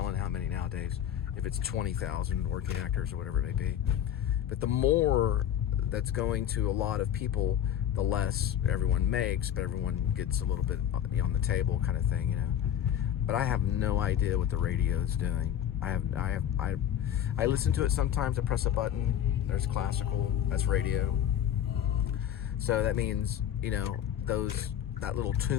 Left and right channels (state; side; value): quieter; right; 10.1 dB